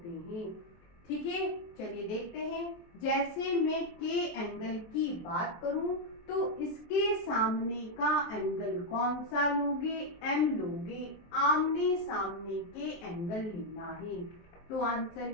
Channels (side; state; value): right; late; 23 ms